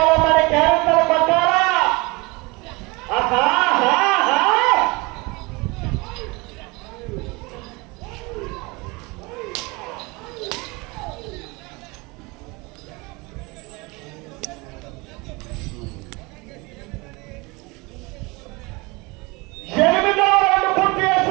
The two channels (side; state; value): left; quieter; 25.5 dB